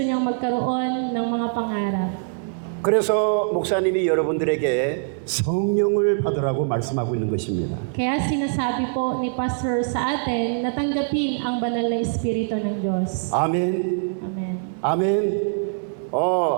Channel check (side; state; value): left; silent; 58 dB below the other